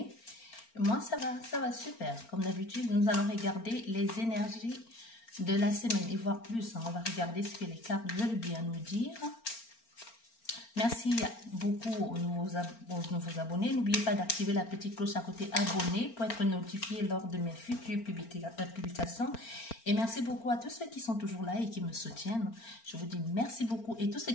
Moi ça va super. Comme d'habitude, nous allons regarder les énergies de la semaine et voir plus. On va regarder ce que les cartes veulent bien nous dire. Merci beaucoup aux nouveaux abonnés. N'oubliez pas d'activer la petite cloche à côté abonné pour être notifié lors de mes futures publications. Et merci beaucoup à tous ceux qui sont toujours là et qui me soutiennent. Je vous dis merci beaucoup. Et tous ceux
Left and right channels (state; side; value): late; right; 4.4 ms